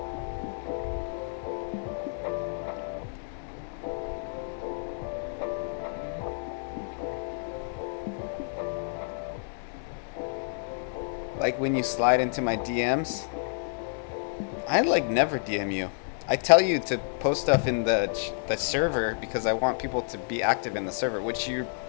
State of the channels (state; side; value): silent; right; digital silence